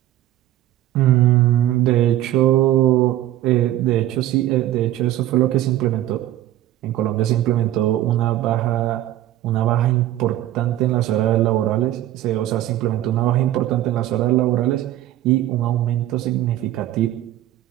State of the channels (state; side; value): quieter; left; 13.7 dB